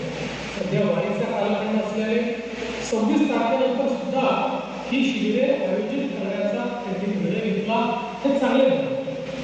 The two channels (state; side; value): identical; both; correlation 1.00